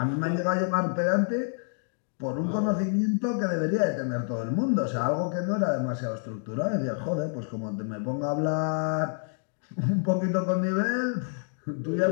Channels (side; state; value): right; silent; 59 dB below the other